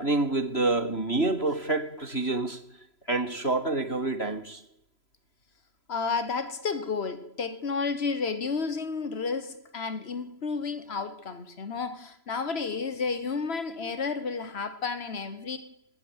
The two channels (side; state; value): right; late; 3.0 ms